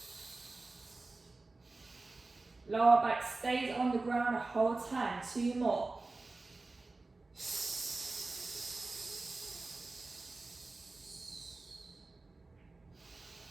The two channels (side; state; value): left; quieter; 3.4 dB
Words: Lower back stays on the ground the whole time. 2 more.